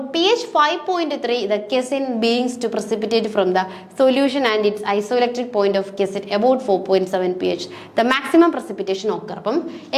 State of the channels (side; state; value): both; identical; correlation 1.00